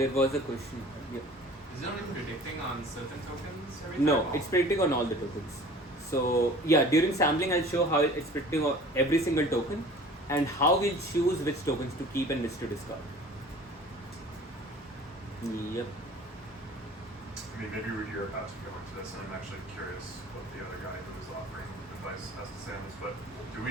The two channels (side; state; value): both; normal; correlation 0.45